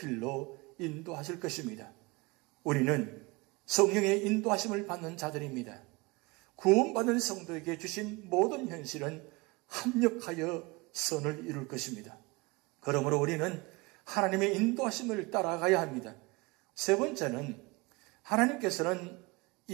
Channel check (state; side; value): quieter; left; 25.3 dB